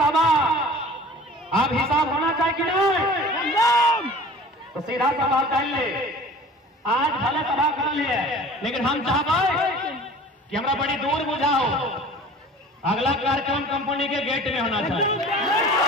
अब हिसाब होना चाहिए कि नहीं? तो सीधा सवाल कर ले, आज भले सभा कर लिए, लेकिन हम चाहते कि हमरा बड़ी दूर बुझाओ, अगला कार्यक्रम कंपनी के गेट में होना चाहिए।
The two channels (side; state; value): both; normal; correlation 0.43